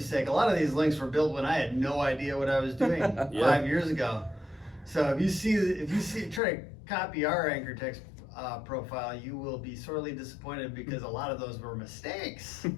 sake, a lot of these links were built when I had no idea what I was doing 5 years ago. So if you try to copy our anchor text profile, you will be sorely disappointed, because a lot of those were mistakes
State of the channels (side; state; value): right; drops out; at 6.4 s